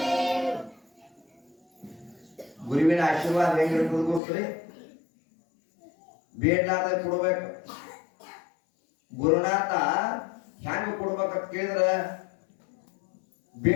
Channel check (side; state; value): right; drops out; at 4.2 s